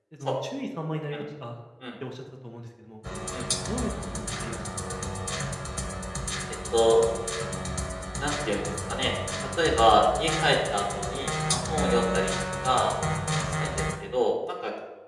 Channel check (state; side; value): identical; both; correlation 1.00